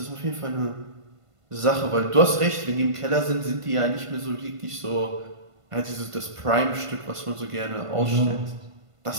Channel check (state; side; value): late; left; 1.5 ms